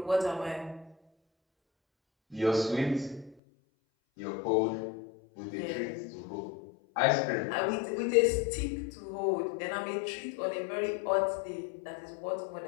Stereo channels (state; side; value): drops out; right; at 3.4 s